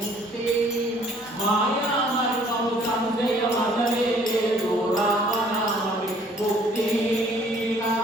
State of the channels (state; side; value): normal; both; correlation 0.58